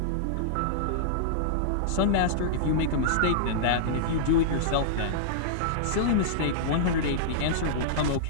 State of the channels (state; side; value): different; both; correlation -0.02